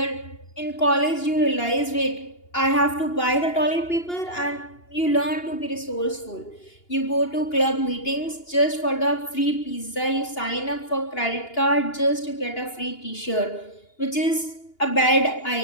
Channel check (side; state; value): right; late; 2.8 ms